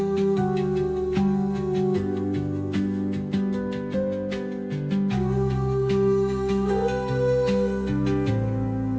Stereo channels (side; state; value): both; identical; correlation 1.00